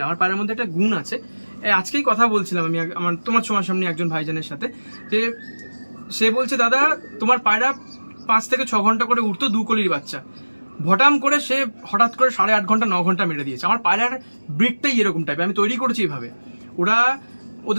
আমার পায়রার মধ্যে একটা গুণ আছে। আজকেই কথা বলছিলাম আমি তোমার সামনে একজন ভাইজানের সাথে, যে সে বলছে দাদা তোমার পায়রা 5 থেকে 6 ঘন্টা করে উঠতো 2 কলির বাচ্চা, ভটাম করে সে হঠাৎ করে 8.5 ঘন্টা 9 ঘন্টা মেরে দিয়েছে। আমার পায়রার ব্রিডটাই এরকম টাইপের, আমি তৈরি করেছি এইভাবে। ওরা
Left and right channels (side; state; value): both; inverted; correlation -1.00